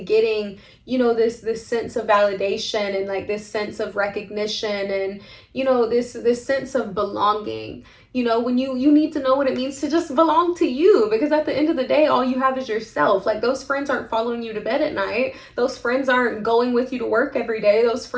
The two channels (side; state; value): both; identical; correlation 1.00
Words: getting, this sense of validation, and like this sense of recognition, and this sense of belonging. When you need to know what it means to just belong to you, because at the end of the day, all you have is yourself. Like, those friends aren't following you to bed at night. Those friends aren't going with you to work every day. Those